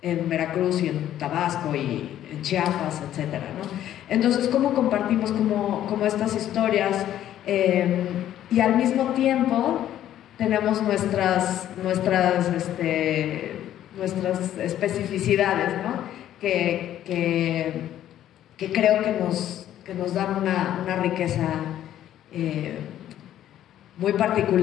en Veracruz y en Tabasco y en Chiapas, etcétera, ¿no? Entonces, ¿cómo compartimos como estas historias? Y al mismo tiempo tenemos nuestras especificidades, ¿no? Que creo que nos dan una riqueza muy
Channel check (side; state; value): right; quieter; 11.8 dB